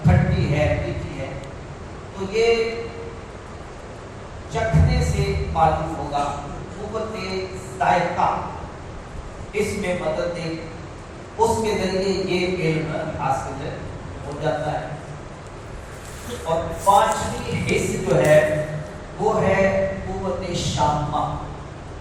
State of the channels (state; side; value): identical; both; correlation 1.00